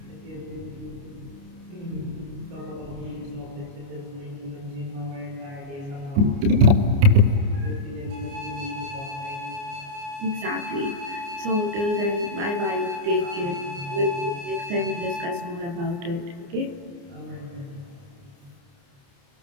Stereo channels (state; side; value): late; left; 29 ms